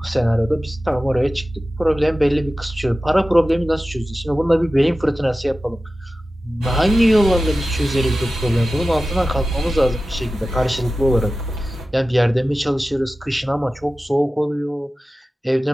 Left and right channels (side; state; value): both; normal; correlation 0.95